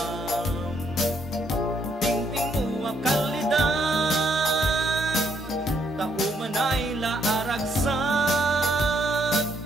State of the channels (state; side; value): normal; both; correlation 0.72